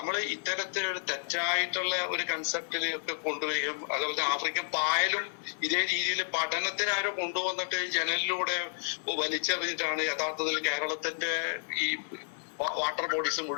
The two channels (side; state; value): right; silent; 57 dB below the other